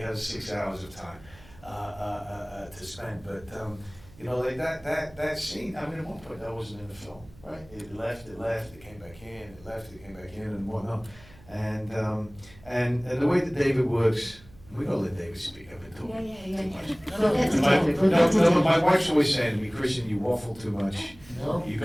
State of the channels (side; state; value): right; noise; hum, 23 dB below the sound